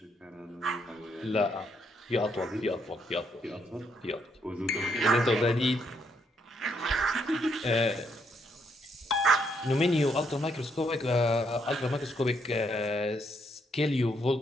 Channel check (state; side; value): normal; both; correlation 0.74